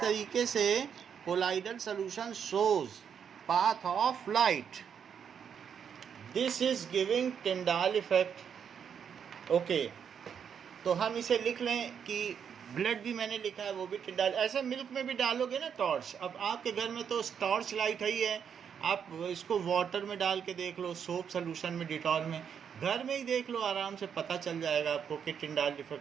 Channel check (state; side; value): quieter; left; 7.6 dB